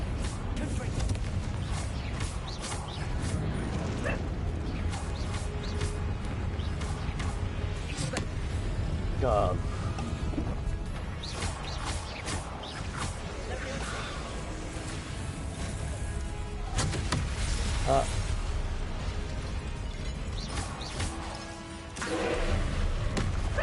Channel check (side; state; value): both; identical; correlation 1.00